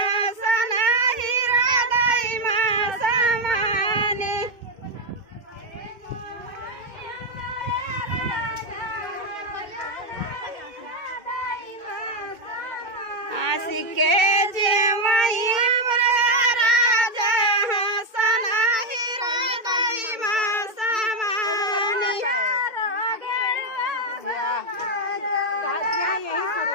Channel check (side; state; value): left; late; 2.2 ms